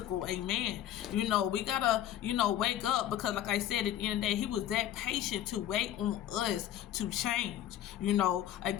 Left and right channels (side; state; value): right; quieter; 11.7 dB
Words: amen. We gotta, wake up, because like I said, at the end of the day, he was that patient to wait on us to change.